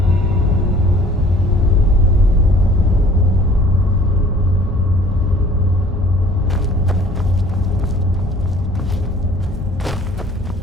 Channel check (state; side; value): normal; both; correlation 0.52